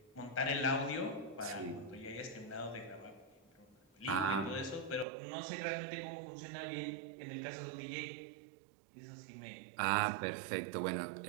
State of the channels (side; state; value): left; drops out; at 5.1 s